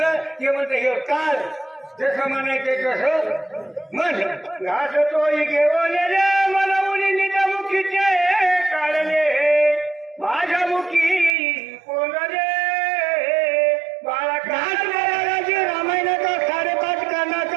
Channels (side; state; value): left; drops out; at 11.4 s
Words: ते म्हणतं हे काल जसं म्हणायचं तसं म्हण. घास तोही घेऊन रे मला मुलीच्या मुखीचे काढले माझ्या मुखी कोण रे बाळा घास महाराजाची रामायणाचा 5.5